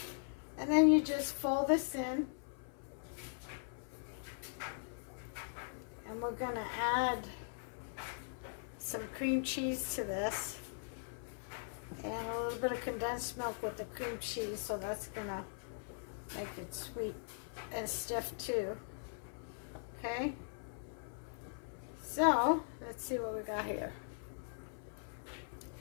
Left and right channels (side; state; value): right; silent; 51 dB below the other